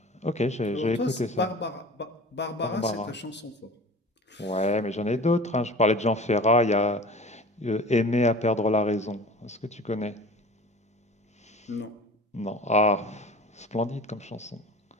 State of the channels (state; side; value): normal; both; correlation 0.40